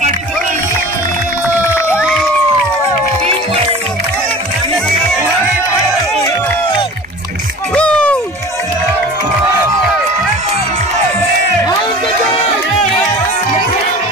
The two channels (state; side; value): normal; both; correlation 0.39